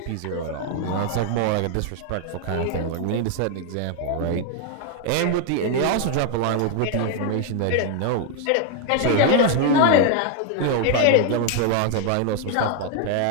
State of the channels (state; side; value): different; both; correlation 0.00